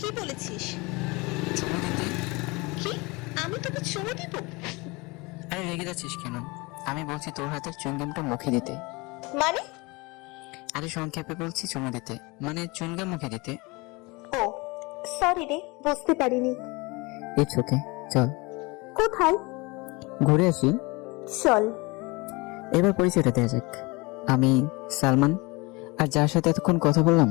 বলেছিস? চুমু দিতে? কি? আমি তোকে চুমু দিব? আরে রেগে যাচ্ছিস কেন? আমি বলছি তোর হাতের চুইংগামটা মুখে দিতে। মানে? আরে সংক্ষেপে বলছি চুমু দিতে, মানে চুইংগাম মুখে দিতে। ও সরি রে, বুঝতে পারিনি। ইটস ওকে, চল কোথায়? ঘুরে আসি। চল। এবার পরিচয়টা দেওয়া যাক। আমি সালমান, আর যার সাথে এতক্ষণ কথা বললাম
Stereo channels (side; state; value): right; quieter; 25.5 dB